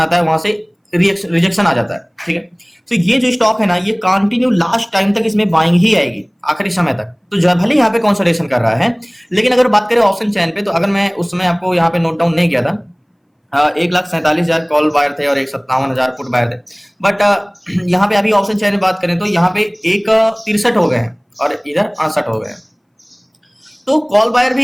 है, वहां से रिजेक्शन आ जाता है, ठीक है। तो ये जो स्टॉक है ना, ये कंटिन्यू लास्ट टाइम तक इसमें बाइंग ही आएगी आखिरी समय तक। तो जो भले यहाँ पे कंसोलिडेशन कर रहा है, लेकिन अगर बात करें ऑप्शन चैन पे, तो अगर मैं उस समय आपको यहाँ पे नोट डाउन नहीं किया था, 1,47,000 कॉल बायर थे और 57,000 पुट बायर थे। बट यहाँ पे अभी ऑप्शन चैन में बात करें तो यहाँ पे 63 हो गए हैं और इधर 68 हो गए हैं। तो कॉल बायर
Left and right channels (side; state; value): both; identical; correlation 1.00